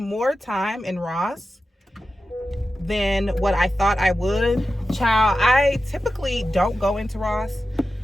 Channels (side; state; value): both; normal; correlation 0.92